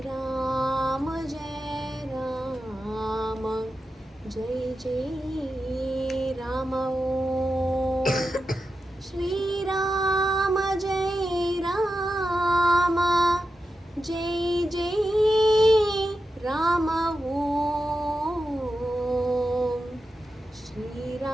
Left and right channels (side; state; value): both; normal; correlation 0.90